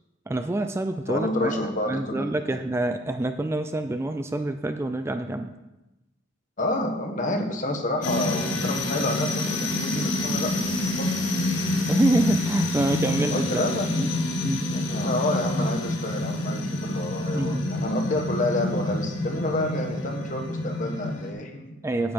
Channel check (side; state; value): both; normal; correlation 0.59